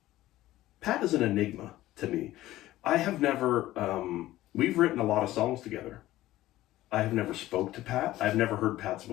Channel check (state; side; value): quieter; right; 15.7 dB